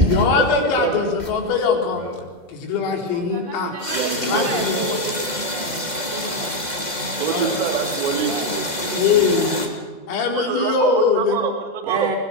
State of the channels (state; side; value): late; left; 2.1 ms